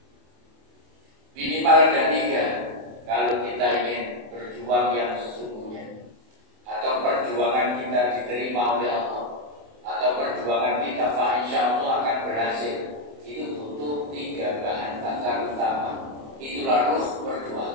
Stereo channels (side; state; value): left; late; 27 ms